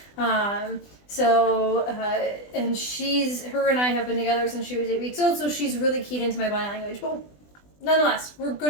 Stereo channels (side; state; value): right; late; 20 ms